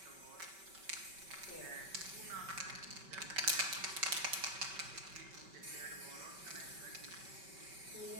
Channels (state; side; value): late; left; 5.2 ms